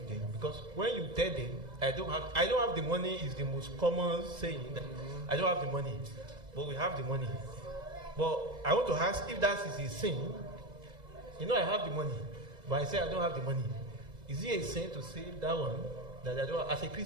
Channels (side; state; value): left; late; 2.0 ms